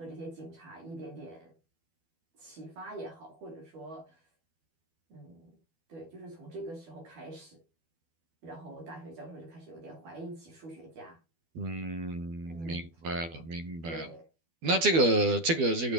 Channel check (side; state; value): left; late; 12 ms